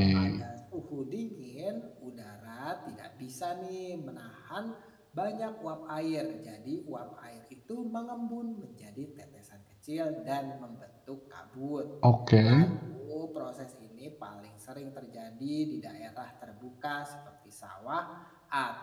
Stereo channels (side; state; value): both; identical; correlation 1.00